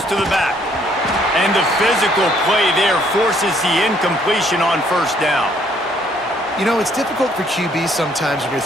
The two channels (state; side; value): normal; both; correlation 0.65